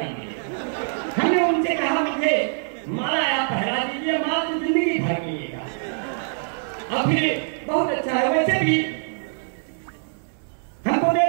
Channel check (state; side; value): silent; left; digital silence